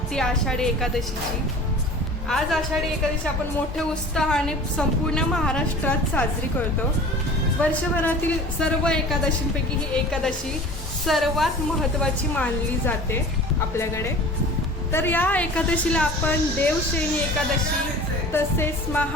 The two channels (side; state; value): both; normal; correlation 0.41